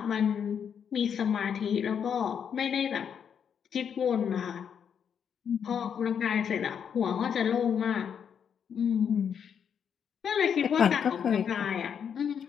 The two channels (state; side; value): quieter; right; 7.7 dB